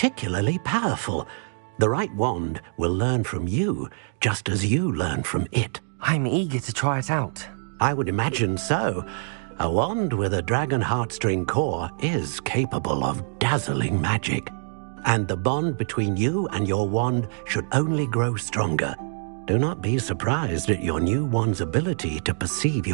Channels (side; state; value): left; silent; 62 dB below the other